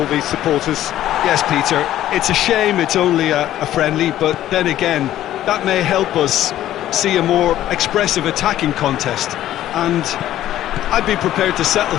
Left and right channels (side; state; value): right; quieter; 12.9 dB